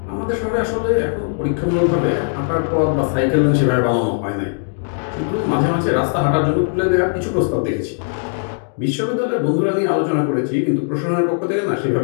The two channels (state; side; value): silent; right; digital silence